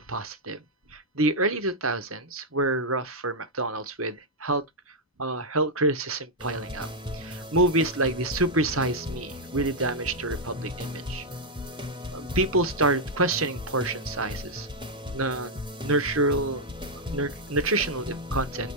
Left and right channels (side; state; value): both; normal; correlation -0.02